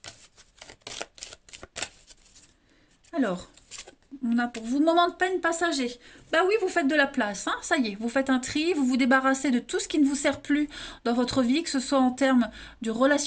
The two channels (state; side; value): identical; both; correlation 1.00